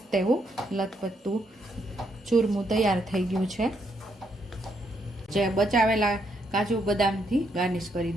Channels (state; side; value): normal; both; correlation 0.76